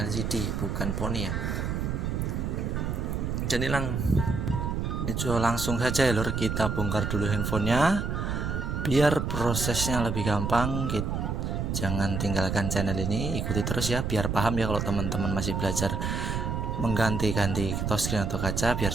LCD, bukan poni ya. Jadi langsung saja ya lor, kita bongkar dulu handphonenya biar prosesnya lebih gampang. Jangan tinggalkan channel ini, ikuti terus ya biar paham ya. Kalau teman-teman masih belajar mengganti-ganti touchscreen atau kaca biar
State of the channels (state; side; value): noise; right; rumble, 1 dB below the sound